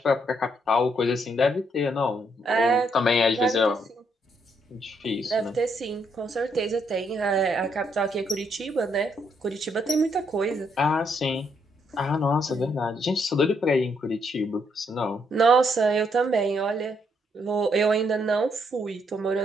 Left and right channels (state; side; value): normal; both; correlation 0.74